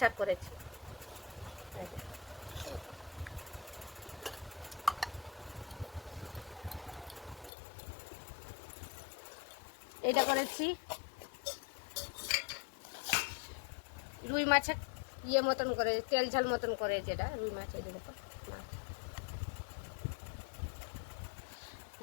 করেছি। এটা করেছি রুই মাছের মতন করে, তেল ঝাল মতন করে, যেটা রুই মাছ। এই দেখো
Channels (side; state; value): right; drops out; at 7.5 s